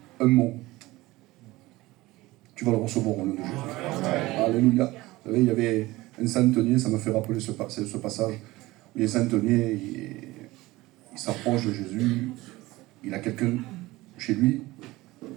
un mot, tu vas le recevoir au nom de Jésus. Alléluia. Vous savez, il y avait un centenier, ça me fait rappeler ce passage, où il y a un centenier, il s'approche de Jésus, il a quelqu'un chez lui, un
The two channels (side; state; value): left; quieter; 19.3 dB